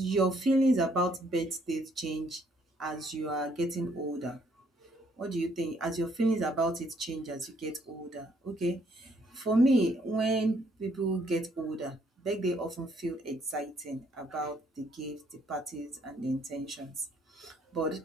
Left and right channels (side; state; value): both; normal; correlation 0.67